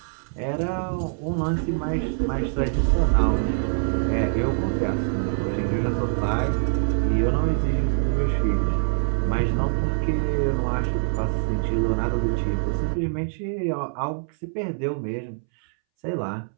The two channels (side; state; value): left; silent; 62 dB below the other